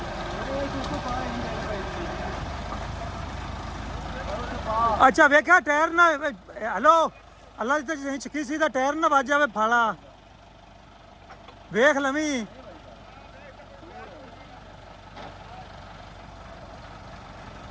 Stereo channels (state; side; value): identical; both; correlation 1.00